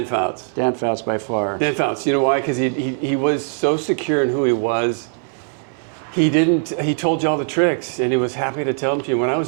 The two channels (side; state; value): left; silent; 65 dB below the other